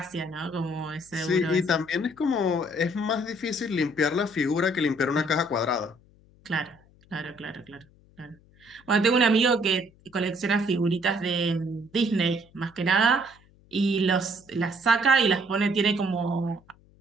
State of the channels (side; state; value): left; noise; hum, 29 dB below the sound